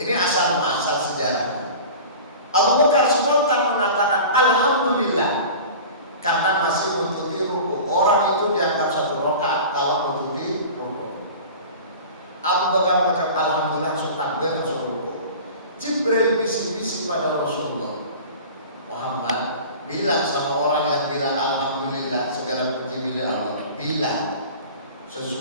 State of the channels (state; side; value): inverted; both; correlation -0.37